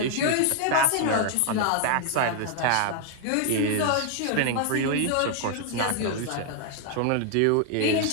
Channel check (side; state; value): both; different; correlation 0.00